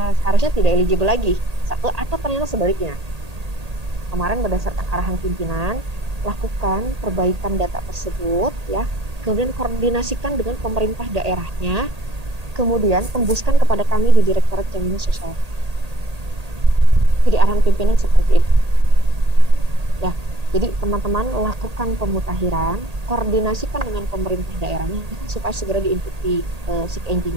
seharusnya tidak eligible lagi, satu, atau ternyata sebaliknya. Kemarin berdasarkan arahan pimpinan, lakukan perbaikan data tersebut, ya. Kemudian koordinasikan dengan pemerintah daerahnya, kemudian tembuskan kepada kami di Direktorat Jaminan Sosial. Jadi arahan pimpinan seperti itu. Ya, jadi teman-teman lakukan pemutahiran, koordinasikan dengan pemerintah daerahnya supaya segera diinput di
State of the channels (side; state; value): left; late; 1.8 ms